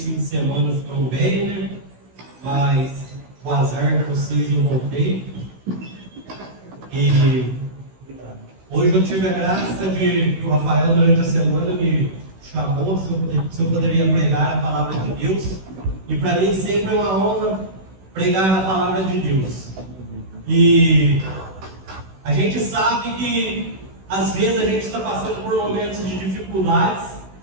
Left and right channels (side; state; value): left; late; 16 ms